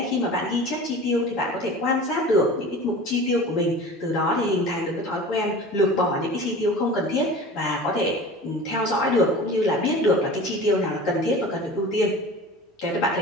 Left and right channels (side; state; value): both; normal; correlation 0.38